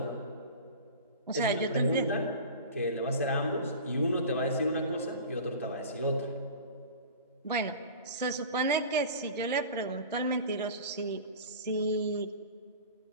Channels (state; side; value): inverted; both; correlation -0.36